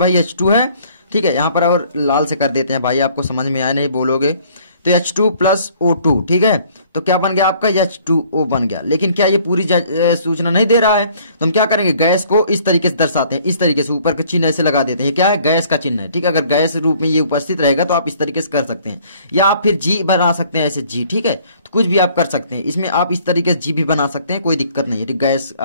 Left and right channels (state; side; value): inverted; both; correlation -0.58